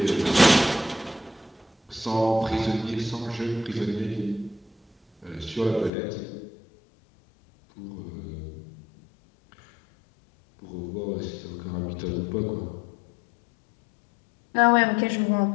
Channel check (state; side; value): drops out; right; at 5.9 s